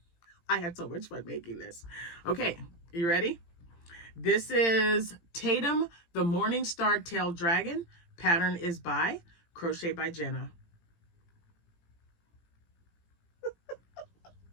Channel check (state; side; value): late; right; 18 ms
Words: had so much fun making this. Okay, you ready? This is Tatum, the Morning Star Tail Dragon. Pattern is by Crochet by Jenna.